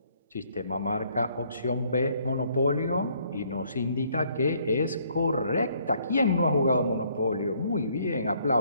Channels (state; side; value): inverted; both; correlation -0.66